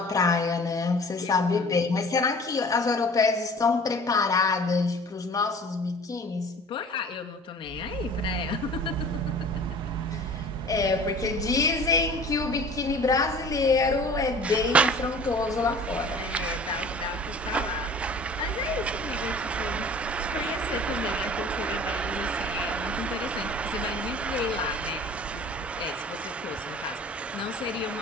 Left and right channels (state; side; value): normal; both; correlation 0.45